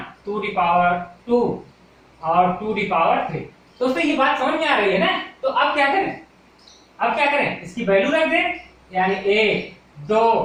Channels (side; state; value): both; identical; correlation 1.00